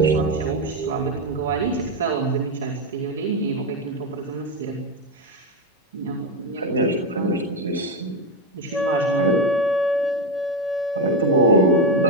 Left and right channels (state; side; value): normal; both; correlation 0.08